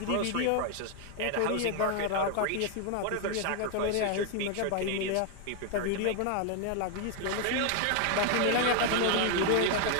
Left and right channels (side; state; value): both; different; correlation 0.00